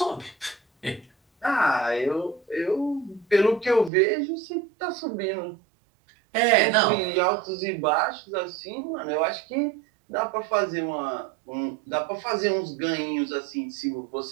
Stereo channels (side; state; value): left; drops out; at 3.9 s